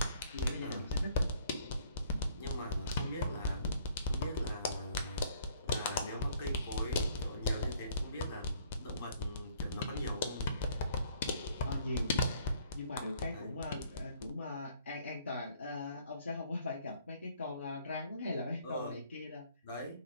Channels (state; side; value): inverted; both; correlation -0.60